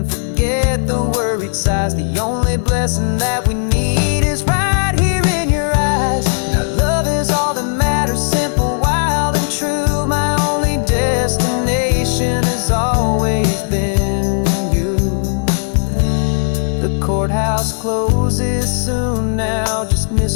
forget the worried sighs. The only blessing that we need is right here in your eyes. Now love is all that matters, simple, wild and true. My only destination has always been you. The courthouse closes soon now, just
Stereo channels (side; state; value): right; silent; digital silence